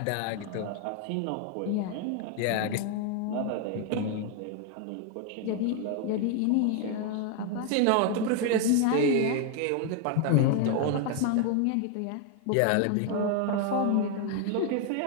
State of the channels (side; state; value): both; different; correlation 0.00